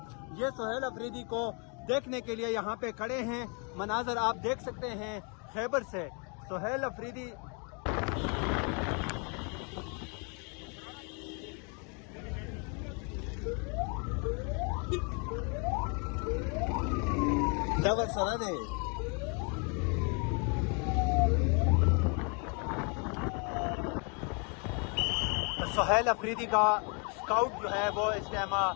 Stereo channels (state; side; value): quieter; right; 35.4 dB